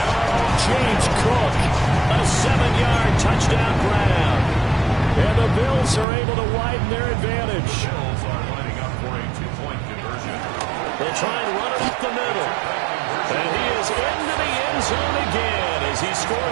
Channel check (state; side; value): drops out; left; at 6.1 s